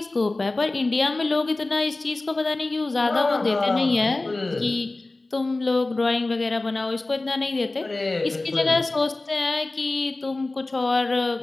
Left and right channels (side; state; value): right; quieter; 3.1 dB